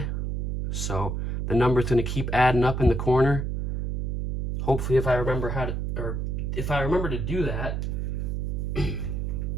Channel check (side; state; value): right; noise; hum, 1 dB below the sound